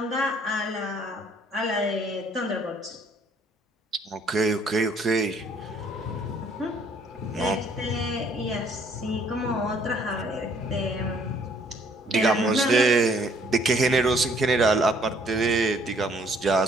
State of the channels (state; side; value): normal; both; correlation 0.62